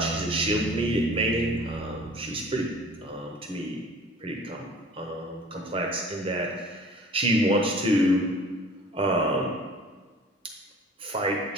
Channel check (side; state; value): both; normal; correlation 0.46